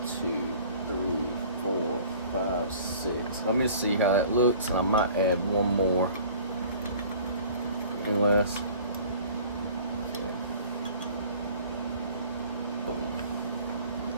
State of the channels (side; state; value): both; inverted; correlation -0.48